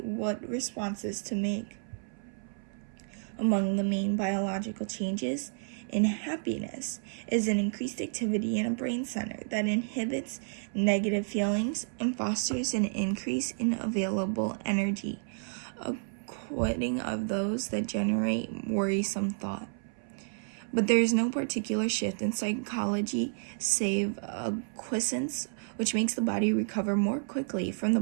what responses to make. Among the main biological changes in happiness is an increased activity in a brain center that inhibits negative feelings and fosters an increase in available energy, a quitting of those that generate worrisome thought. But there is no particular shift in psychology save quiescence, which makes the body recover more quickly from the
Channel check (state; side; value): silent; left; 57 dB below the other